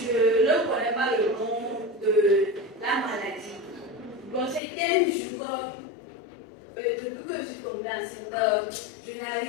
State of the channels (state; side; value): drops out; right; at 4.6 s